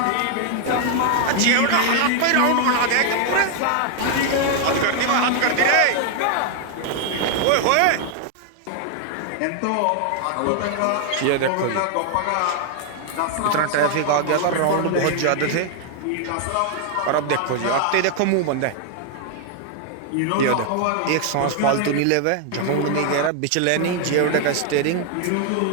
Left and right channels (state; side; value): different; both; correlation 0.00